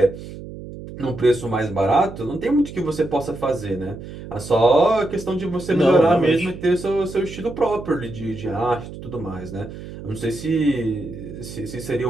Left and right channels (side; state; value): right; noise; hum, 12 dB below the sound